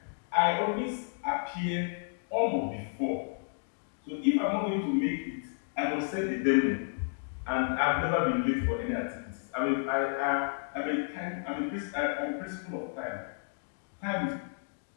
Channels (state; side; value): silent; right; digital silence